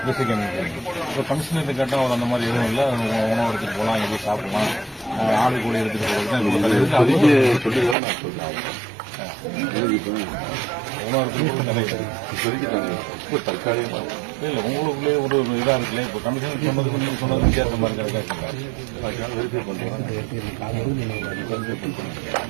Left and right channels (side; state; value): left; drops out; at 8.0 s